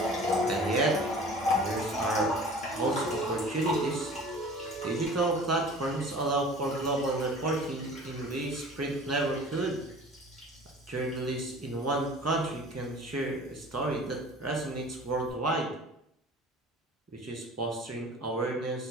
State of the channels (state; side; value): normal; both; correlation 0.44